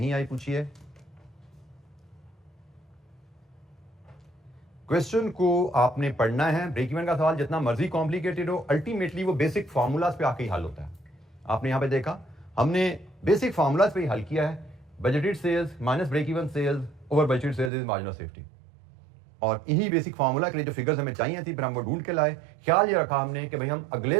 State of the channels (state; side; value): drops out; left; at 17.7 s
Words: आई पूछिए। क्वेश्चन को आपने पढ़ना है। ब्रेक इवन का सवाल जितना मर्जी कॉम्प्लिकेटेड हो, अल्टीमेटली वो बेसिक फार्मूलाज पे आके ही हल होता है। आपने यहां पे देखा हमने बेसिक फार्मूलाज पे ही हल किया है। Budgeted sales minus break even sales over budgeted sales is margin of safety, और इन्हीं बेसिक फार्मूला के लिए जो फिगर्स हमें चाहिए थी फिर हम वो ढूंढ के लाए। ख्याल ये रखा हमने कि भाई हम